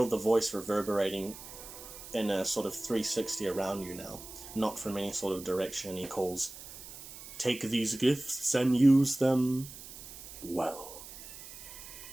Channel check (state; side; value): noise; right; hiss, 14 dB below the sound